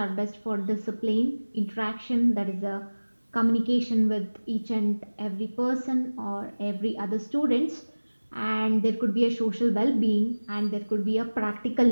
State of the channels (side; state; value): both; inverted; correlation -1.00